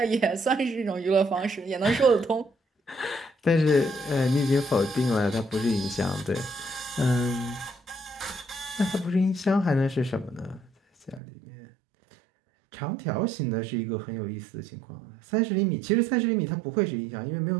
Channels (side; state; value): left; drops out; at 11.2 s